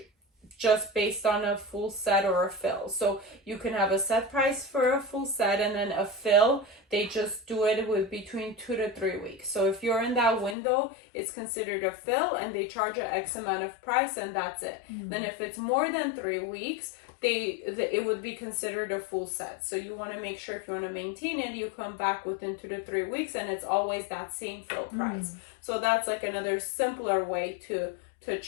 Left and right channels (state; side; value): drops out; right; at 10.6 s